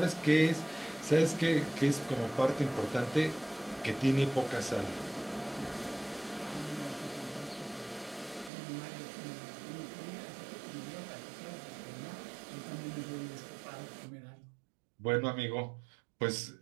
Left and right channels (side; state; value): left; drops out; at 8.5 s